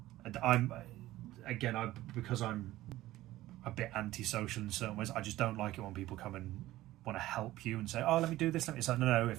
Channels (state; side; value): quieter; left; 16.0 dB